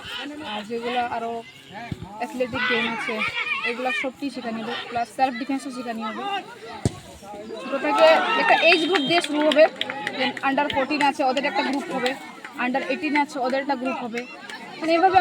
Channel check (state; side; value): identical; both; correlation 1.00